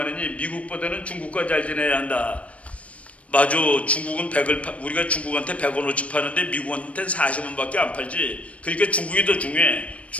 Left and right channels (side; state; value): right; late; 0.064 ms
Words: 미국보다는 중국과 잘 지내야 한다. 맞아. 중국은 우리가 중국한테 100원어치 파는데 미국한테는 40원밖에 안 팔지. 그러니까 중국이 더 중요해.